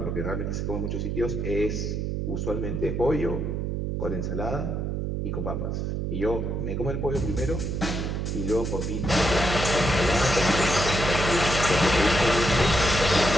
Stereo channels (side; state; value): right; noise; hum, 2 dB below the sound